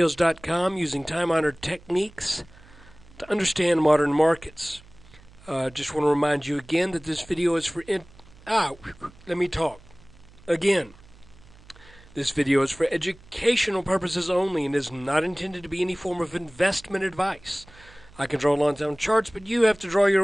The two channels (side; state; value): right; noise; hum, 24 dB below the sound